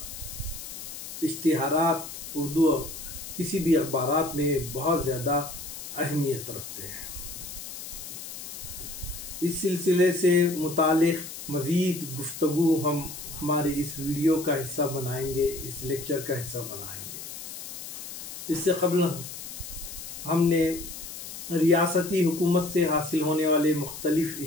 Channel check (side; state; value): left; noise; hiss, 10 dB below the sound